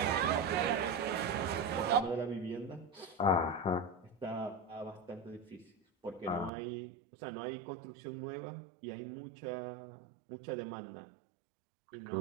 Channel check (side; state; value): left; drops out; at 6.5 s